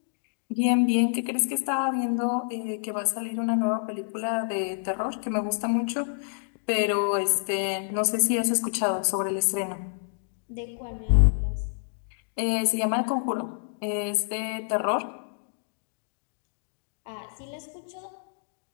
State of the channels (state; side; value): silent; right; digital silence